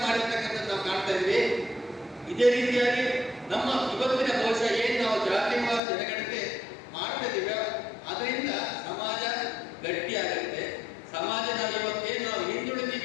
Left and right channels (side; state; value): right; drops out; at 5.8 s